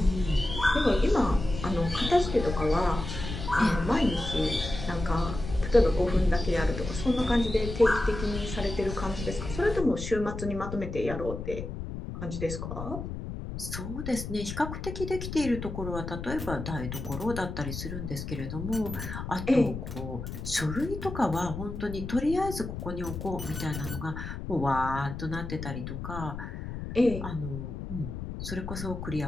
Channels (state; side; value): noise; left; rumble, 7 dB below the sound